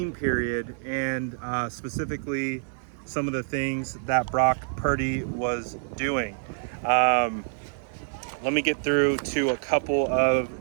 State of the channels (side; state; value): left; silent; 60 dB below the other